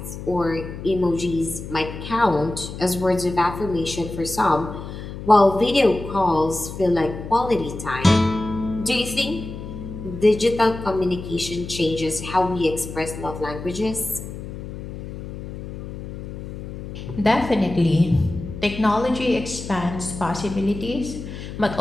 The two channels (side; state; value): left; noise; hum, 10 dB below the sound